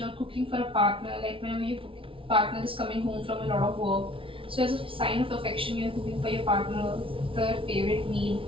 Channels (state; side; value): late; left; 0.26 ms